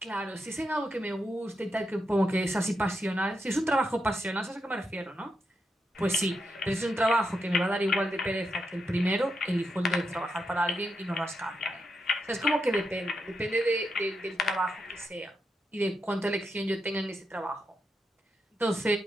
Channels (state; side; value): normal; both; correlation 0.84